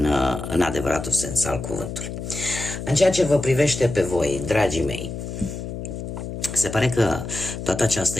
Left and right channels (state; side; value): noise; left; hum, 7 dB below the sound